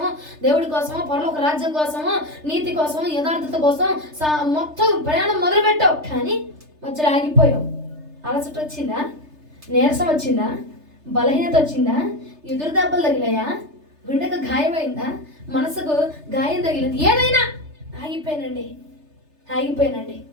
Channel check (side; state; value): left; late; 3.3 ms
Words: దేవుడి కోసమో, పరలోక రాజ్యం కోసమో, నీతి కోసమో, యథార్థత కోసం మొత్తం ప్రయాణం మొదలుపెట్టావు. కానీ మధ్యలో ఆగిపోయావు. అలసట వచ్చిందా? నీరసం వచ్చిందా? బలహీనత వచ్చిందా? ఎదురు దెబ్బలు తగిలాయా? గుండెకు గాయమైందా? మనసుకు గాయం తగిలింది? ఏదైనా ఆగిపోయానండి.